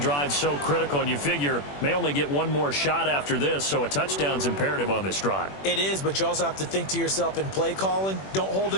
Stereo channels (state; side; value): late; right; 21 ms